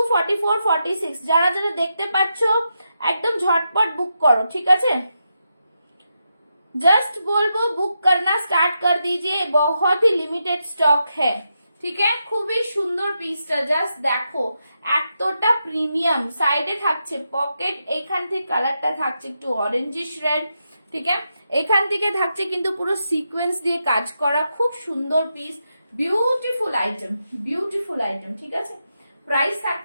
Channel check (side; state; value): both; inverted; correlation -0.85